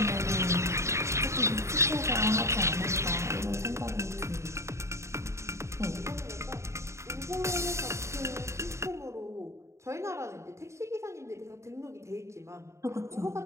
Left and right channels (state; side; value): late; left; 0.14 ms